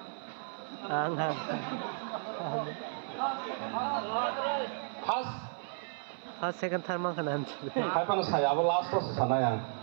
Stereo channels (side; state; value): left; silent; 55 dB below the other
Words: first second third manka na hai pan saya abo last to sana yang